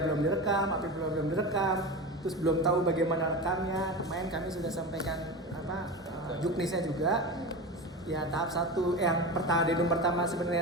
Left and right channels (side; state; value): both; normal; correlation 0.26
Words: belum direkam, APIP belum direkam, terus belum tahu bagaimana rekamnya. Kemarin kami sudah sampaikan juknisnya juga. ya tahap 1 yang denum pertama